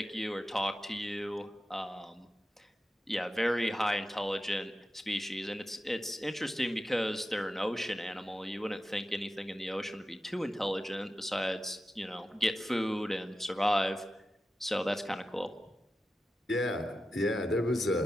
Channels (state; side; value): normal; both; correlation 0.92